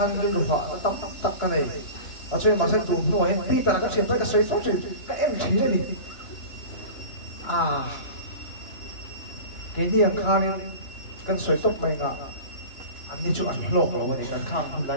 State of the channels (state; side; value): late; right; 2.9 ms